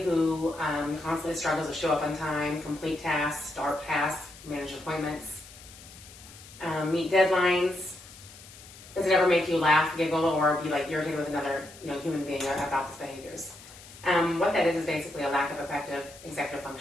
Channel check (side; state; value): left; noise; hiss, 19 dB below the sound